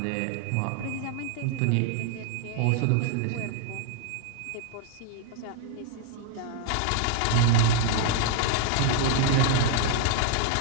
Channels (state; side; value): different; both; correlation 0.00